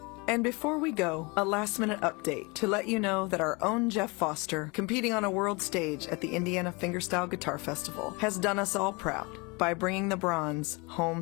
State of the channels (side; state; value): right; quieter; 27.8 dB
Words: And before we go, a last-minute update to let you know that our own Jeff Foster, competing on a world stage at the Indiana Fingerstyle Guitar Festival, has done us all proud by bringing the bronze